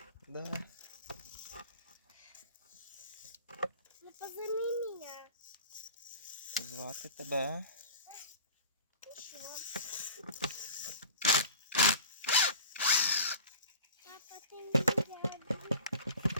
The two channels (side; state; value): both; inverted; correlation -0.40